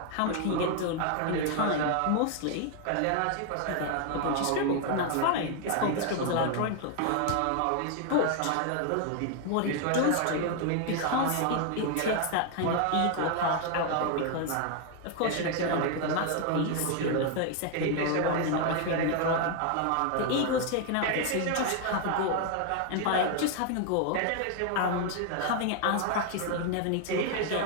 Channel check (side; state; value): both; different; correlation 0.00